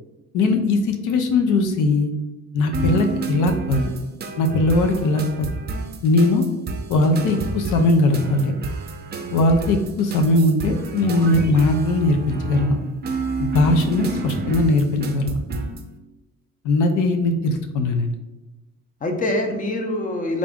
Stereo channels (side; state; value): both; normal; correlation 0.35